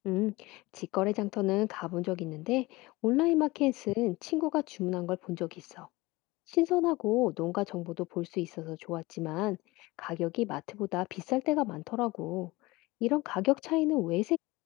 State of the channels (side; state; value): right; quieter; 21.3 dB